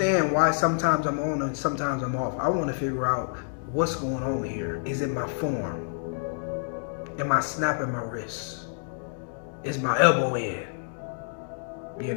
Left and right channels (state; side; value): silent; right; digital silence